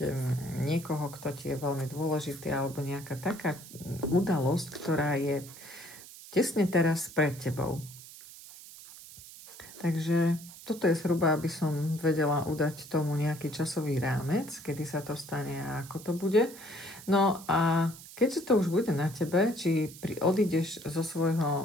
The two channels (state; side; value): noise; right; hiss, 17 dB below the sound